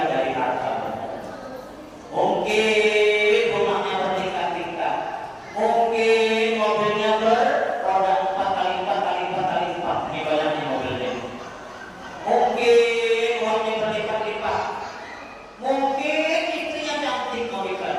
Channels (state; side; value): identical; both; correlation 1.00